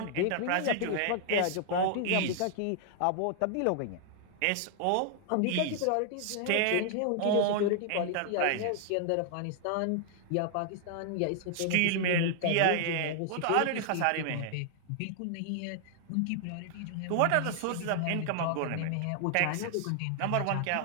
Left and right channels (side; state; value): both; different; correlation 0.00